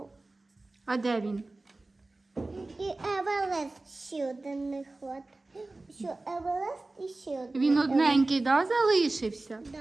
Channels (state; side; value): quieter; left; 3.1 dB